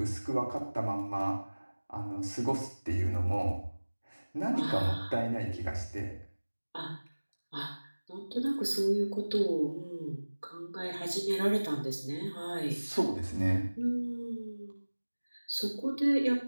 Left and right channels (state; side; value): inverted; both; correlation -1.00